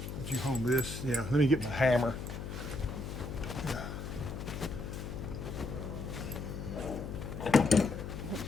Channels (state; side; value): noise; left; hum, 7 dB below the sound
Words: Would you hold this? Yeah, let me get my hammer.